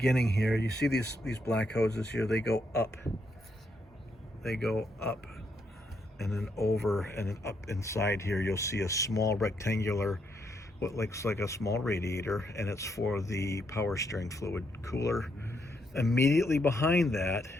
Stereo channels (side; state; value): both; normal; correlation 0.77